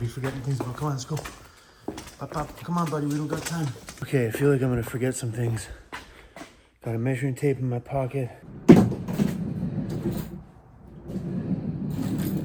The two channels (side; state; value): both; identical; correlation 1.00